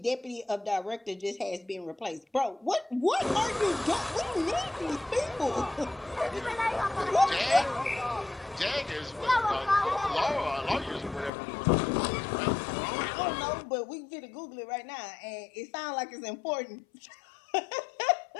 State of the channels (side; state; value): right; drops out; at 11.3 s